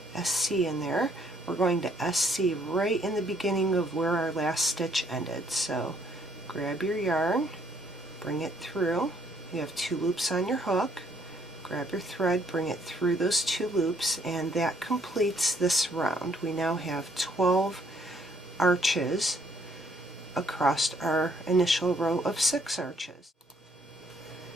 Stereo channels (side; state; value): both; normal; correlation 0.66